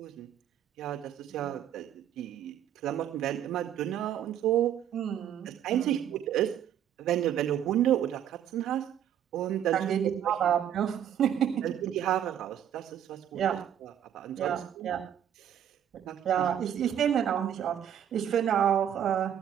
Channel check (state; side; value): quieter; left; 9.9 dB